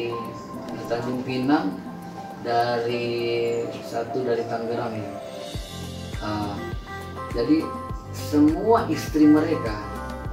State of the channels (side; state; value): both; identical; correlation 1.00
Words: Tanjung Pinang, dari Tangerang ya. Jadi semua istri mereka